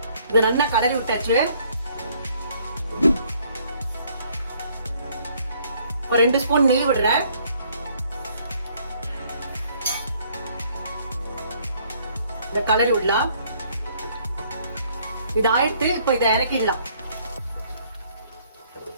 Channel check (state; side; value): inverted; both; correlation -0.64